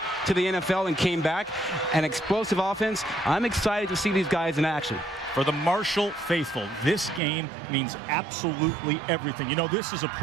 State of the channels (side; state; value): left; drops out; at 7.2 s